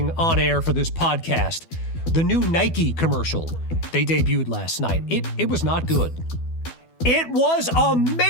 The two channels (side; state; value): right; late; 12 ms